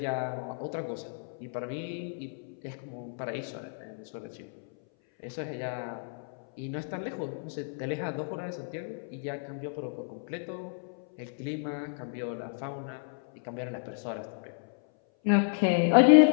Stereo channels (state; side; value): silent; right; 57 dB below the other